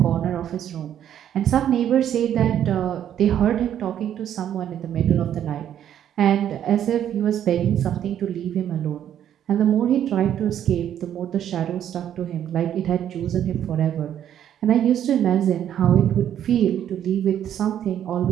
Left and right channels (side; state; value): left; quieter; 10.2 dB